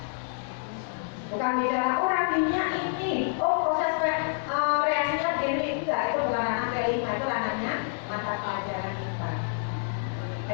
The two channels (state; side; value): silent; right; digital silence